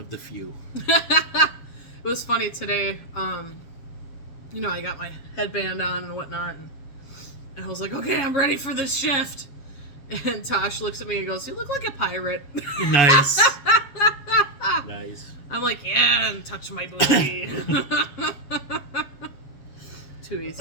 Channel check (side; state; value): right; late; 7.3 ms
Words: the few. It was funny today. I got my headband on and whatnot, and I was like, okay, I'm ready for this shift. And Tosh looks at me and goes, you look like a pirate. Nice. Nice. I'm like, yeah, and touch my booty. Too